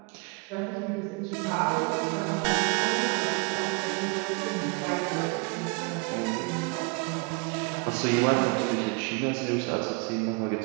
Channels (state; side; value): quieter; left; 32.3 dB